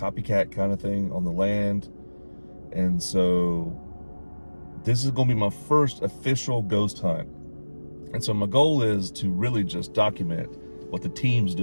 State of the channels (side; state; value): both; inverted; correlation -1.00